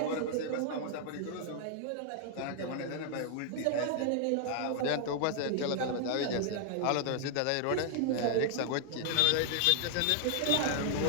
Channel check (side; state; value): both; different; correlation -0.01